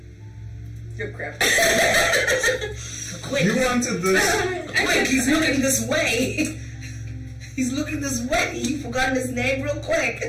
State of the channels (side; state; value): both; identical; correlation 1.00